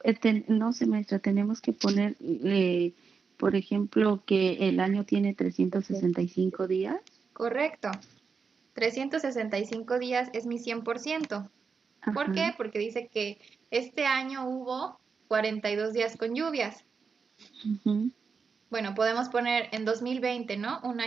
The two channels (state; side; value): quieter; left; 5.4 dB